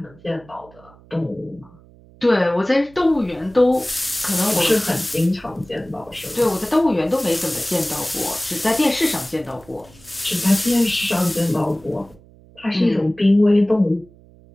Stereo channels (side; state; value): right; noise; hum, 25 dB below the sound